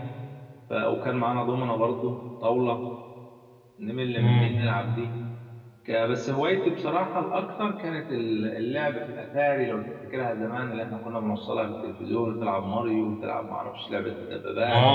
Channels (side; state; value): both; identical; correlation 1.00